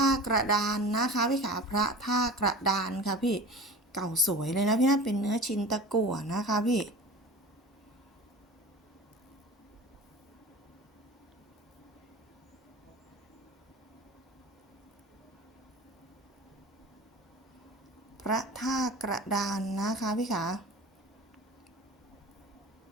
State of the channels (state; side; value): normal; both; correlation 0.37